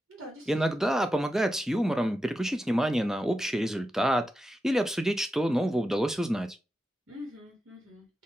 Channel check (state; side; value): normal; both; correlation 0.90